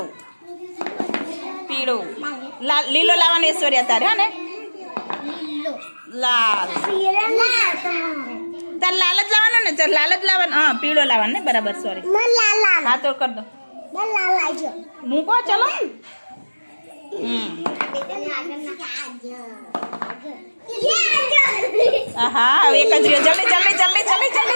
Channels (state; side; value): inverted; both; correlation -1.00